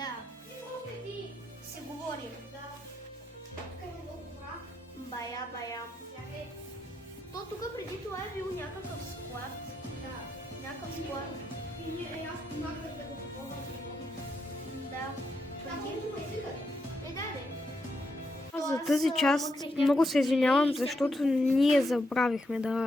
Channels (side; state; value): both; normal; correlation 0.81